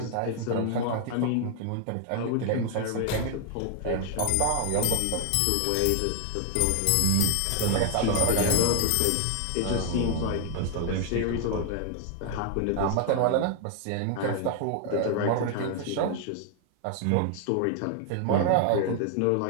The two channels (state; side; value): different; both; correlation 0.00